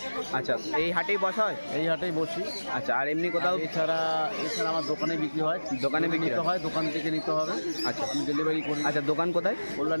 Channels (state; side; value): inverted; both; correlation -1.00